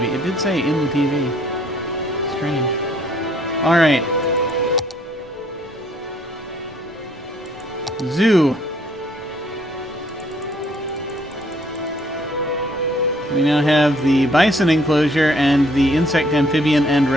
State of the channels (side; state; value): both; normal; correlation 0.64